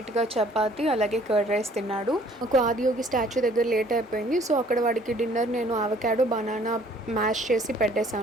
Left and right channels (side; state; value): both; normal; correlation 0.57